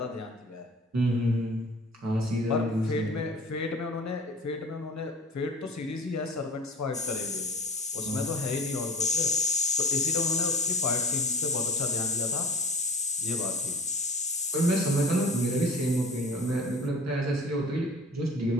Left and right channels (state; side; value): normal; both; correlation 0.39